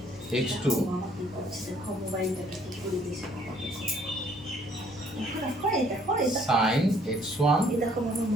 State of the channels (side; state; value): both; normal; correlation 0.62